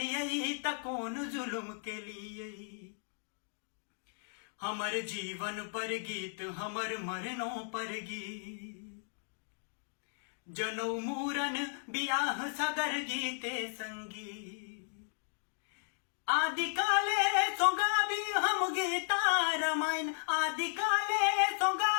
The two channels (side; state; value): right; silent; digital silence